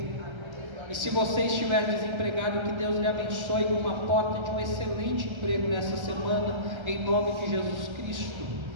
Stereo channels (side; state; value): left; late; 1.3 ms